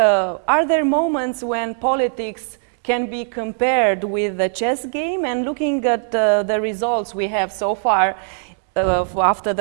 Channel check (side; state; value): left; silent; 66 dB below the other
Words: Are there moments when politics can be compared with the chess game? And looking at the results we have so far after